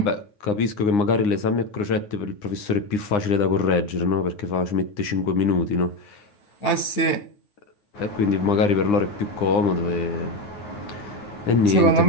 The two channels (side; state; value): right; late; 9.8 ms